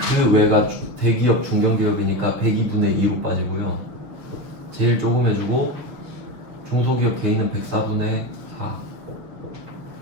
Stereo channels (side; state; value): left; late; 6.7 ms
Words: 외가 대기업 중견기업이니까 102분의 2로 빠지고요. 제일 조금 해주고 중소기업 개인은 104분의 4